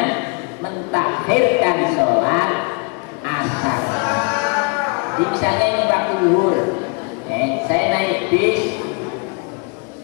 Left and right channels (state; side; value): quieter; right; 34.3 dB